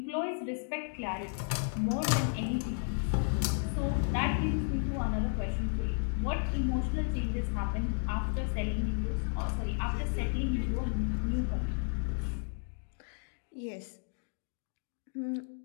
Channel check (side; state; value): right; silent; digital silence